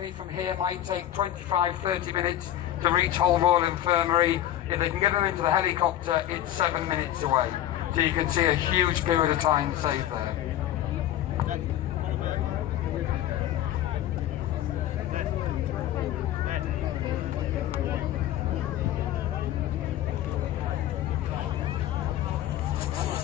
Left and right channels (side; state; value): right; quieter; 12.5 dB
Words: from here might take 25-30 minutes to reach Hull Royal Infirmary. If they can get them into the helicopter, it's 7 minutes away. So you can see a huge period of time saved there.